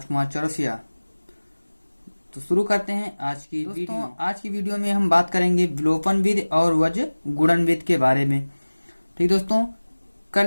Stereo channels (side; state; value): both; inverted; correlation -1.00